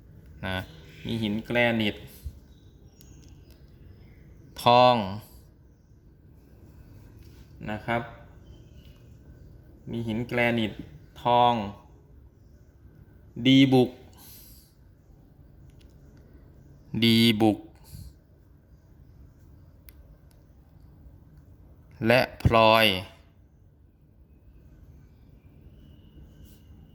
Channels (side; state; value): both; identical; correlation 1.00